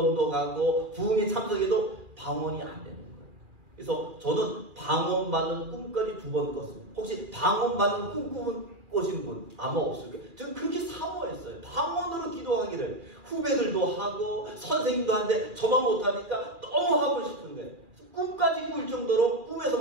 가고 부흥회 참석해도 방언이 안 되는 거예요. 그래서 저는 방언 받는 꿈까지 2번 꿨습니다. 혹시 방언 받는 꿈 꾸신 분 아마 없을 거예요. 저는 그렇게 사모했어요. 방언으로 기도하기를. 후배들도 하고 선생님도 하는데 저만 못하니까 너무 하고 싶은 거예요. 꿈까지 꿀 정도로 꿈에서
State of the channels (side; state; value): left; late; 2.4 ms